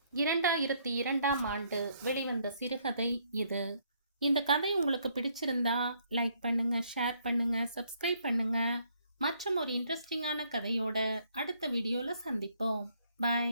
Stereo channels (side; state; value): both; inverted; correlation -0.69